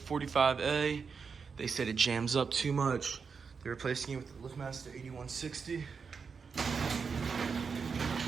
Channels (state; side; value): quieter; left; 5.6 dB